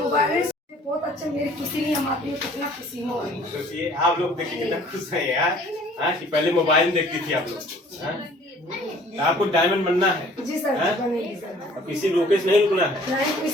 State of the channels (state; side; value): normal; both; correlation 0.54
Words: बहुत अच्छा, मेरी खुशी नहीं हम आती है, कितना खुशी हो रही है। सोचिए आप लोग देखिए कितना खुश है यार, कि पहले मोबाइल में देखती थी आप लोग। आपको डायमंड बनना है? जी सर, बनेगी सर। अब किसी रोके से नहीं रुकना है? नहीं,